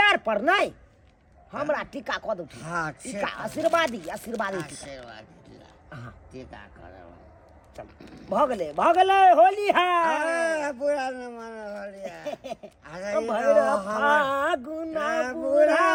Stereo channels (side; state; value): both; identical; correlation 1.00